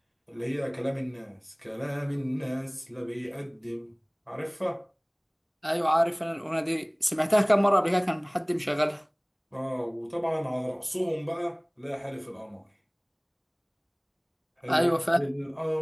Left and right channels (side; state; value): both; identical; correlation 1.00